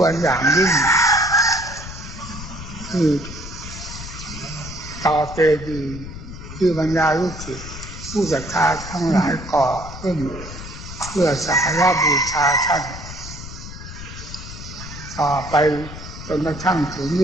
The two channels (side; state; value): left; noise; rumble, 11 dB below the sound